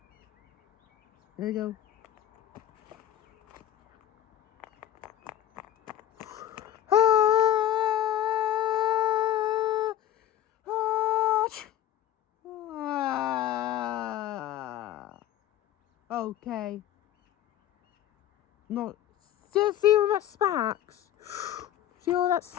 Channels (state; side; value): quieter; right; 11.7 dB